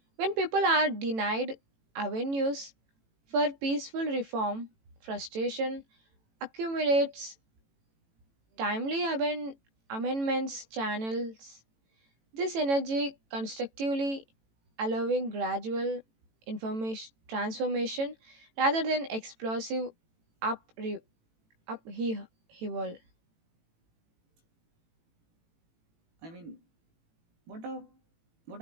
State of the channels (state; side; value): late; left; 18 ms